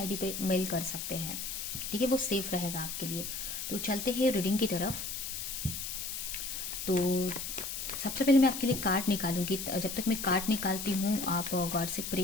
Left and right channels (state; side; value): noise; left; hiss, 5 dB below the sound